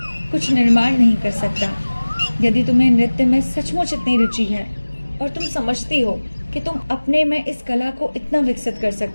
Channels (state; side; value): inverted; both; correlation -1.00